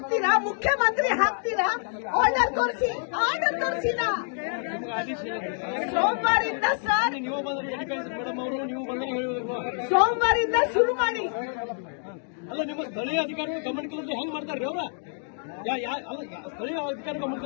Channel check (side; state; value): right; silent; 60 dB below the other